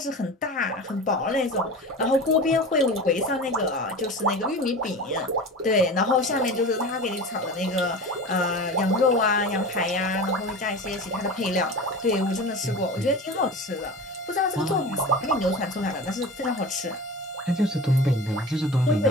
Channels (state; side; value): normal; both; correlation 0.33